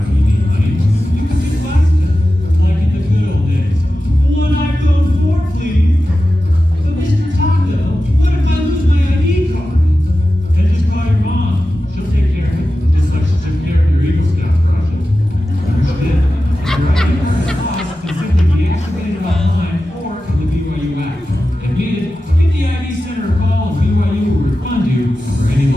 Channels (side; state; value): both; normal; correlation 0.93